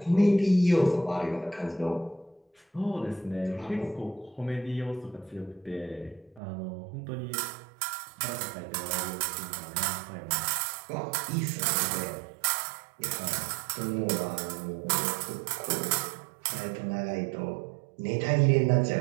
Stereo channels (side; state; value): left; drops out; at 6.4 s